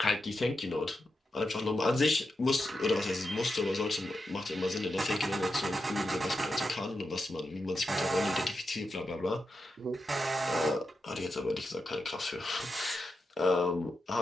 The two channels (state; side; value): normal; both; correlation 0.88